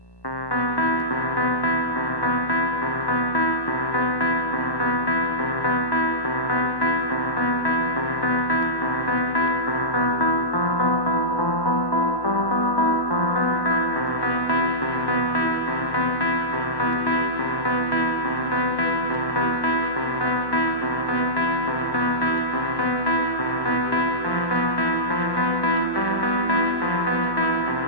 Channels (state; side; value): late; right; 1.1 ms